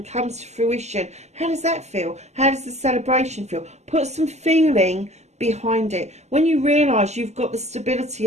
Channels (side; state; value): left; late; 0.33 ms